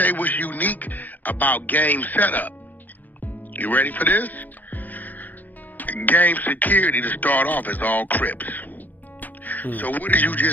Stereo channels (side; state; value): right; late; 0.083 ms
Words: you what's unique about Game setup. You ready for this? Game security to start off is all Crips. So what did you